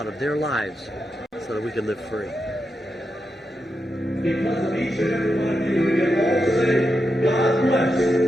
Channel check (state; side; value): normal; both; correlation 0.86